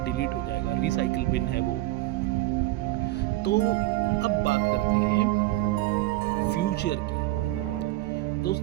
डिलीट हो जाएगा। रिसाइकिल बिन है वो। तो अब बात करते हैं फ्यूचर की।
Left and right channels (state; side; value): quieter; left; 17.7 dB